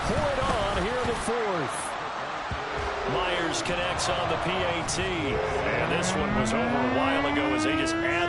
pour it on here in the 4th. Myers connects on the PAT. And this one was over a while ago as they just add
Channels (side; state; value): both; identical; correlation 1.00